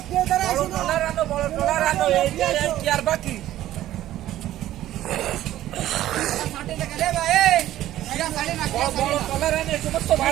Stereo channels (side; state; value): left; quieter; 13.7 dB